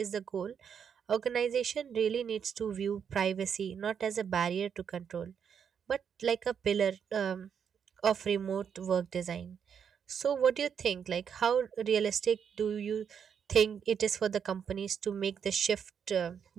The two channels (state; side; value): quieter; left; 7.5 dB